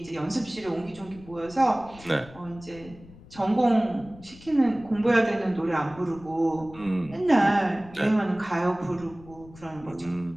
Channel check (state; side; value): noise; left; rumble, 20 dB below the sound